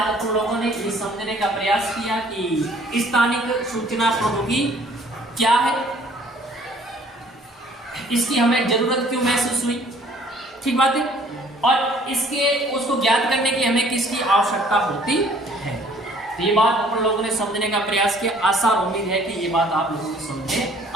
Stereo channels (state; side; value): normal; both; correlation 0.57